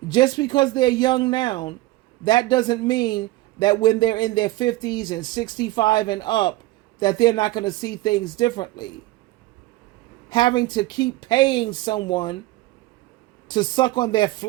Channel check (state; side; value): quieter; left; 18.1 dB